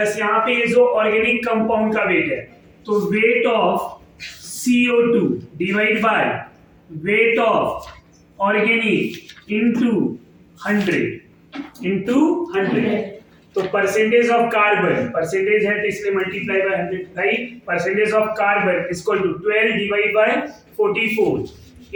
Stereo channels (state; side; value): identical; both; correlation 1.00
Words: यहाँ पे ये जो ऑर्गेनिक कंपाउंड का वेट है, तो weight of CO2 divide by weight of organic into 100 तो परसेंटेज ऑफ कार्बन, परसेंटेज है तो इसलिए multiply by 100, right. Percentage of carbon equal to 12 divide by 44